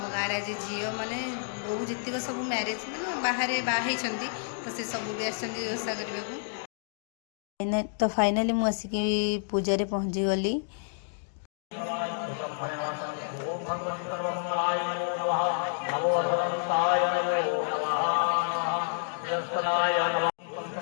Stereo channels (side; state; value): right; silent; digital silence